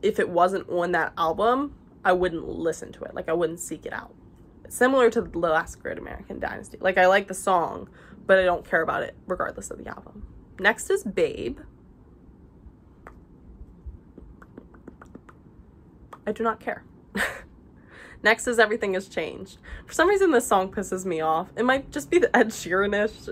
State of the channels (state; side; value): identical; both; correlation 1.00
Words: it wasn't on that album, I wouldn't listen to it. Like, I wouldn't seek it out. It's similar to The Last Great American Dynasty. Like, I like the song, but I don't care about it regardless of the album. Next is Babe. I do not care. Next is Everything Has Changed. For some reason, this song pisses me off. It might just be the Ed